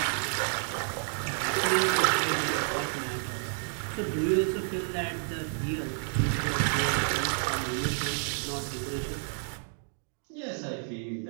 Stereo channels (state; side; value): silent; left; 57 dB below the other